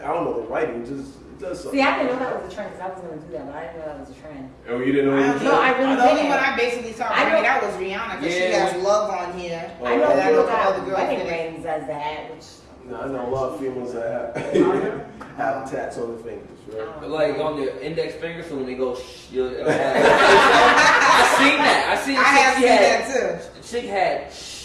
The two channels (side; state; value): both; identical; correlation 1.00